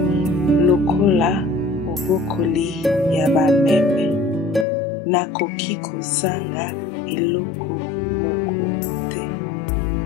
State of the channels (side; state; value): right; drops out; at 4.7 s